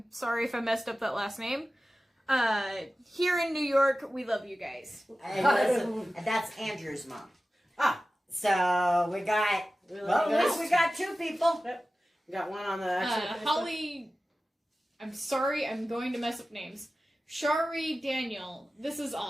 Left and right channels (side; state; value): both; normal; correlation 0.95